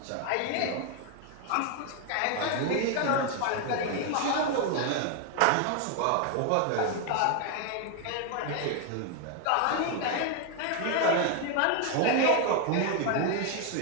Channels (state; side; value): different; both; correlation 0.01